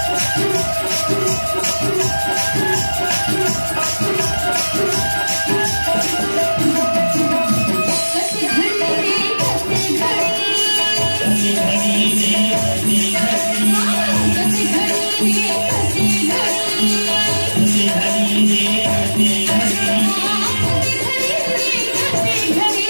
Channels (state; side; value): inverted; both; correlation -1.00